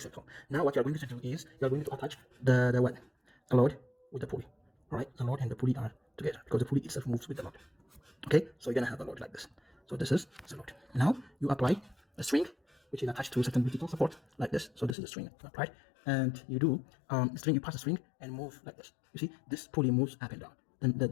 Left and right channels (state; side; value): drops out; right; at 15.0 s